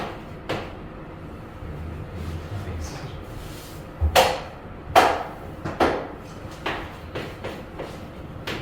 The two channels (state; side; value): identical; both; correlation 1.00